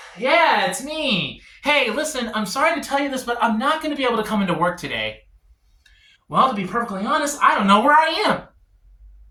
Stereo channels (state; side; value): identical; both; correlation 1.00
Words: Yeah, it's me. Hey, listen, I'm sorry to tell you this, but I'm not gonna be able to come into work today. Well, to be perfectly honest, I don't know where I am.